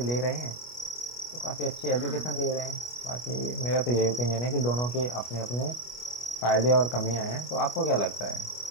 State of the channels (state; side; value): late; right; 25 ms